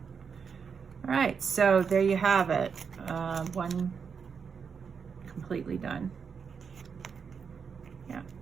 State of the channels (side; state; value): left; quieter; 6.2 dB